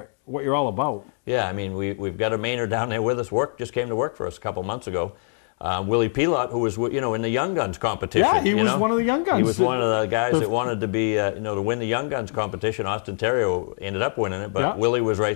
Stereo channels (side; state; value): right; silent; 55 dB below the other